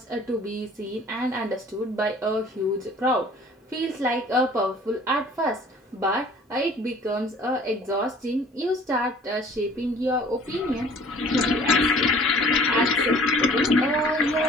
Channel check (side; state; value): both; normal; correlation 0.50